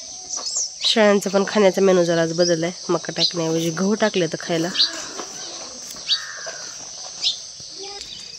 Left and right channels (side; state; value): both; identical; correlation 1.00